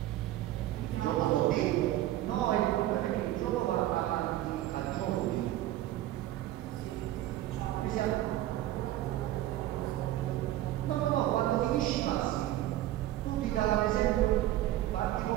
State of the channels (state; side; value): quieter; left; 14.4 dB